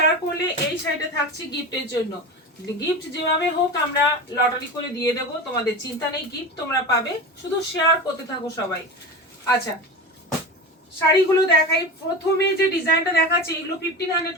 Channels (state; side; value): normal; both; correlation 0.27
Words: করলে এই সাইডে থাকছে গিফটের জন্য। গিফট যেভাবে হোক আমরা লটারি করে দিয়ে দেব, তোমাদের চিন্তা নেই, গিফট তোমরা পাবে, শুধু শেয়ার করতে থাকো সবাই। আচ্ছা, শাড়িগুলো দেখাই। প্রথমে যে ডিজাইনটা দেখাচ্ছে এগুলো 1500